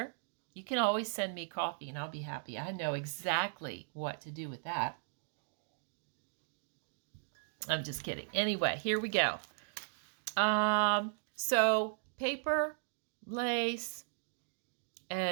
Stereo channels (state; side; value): silent; left; digital silence